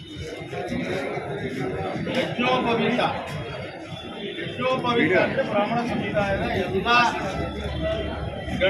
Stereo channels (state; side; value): identical; both; correlation 1.00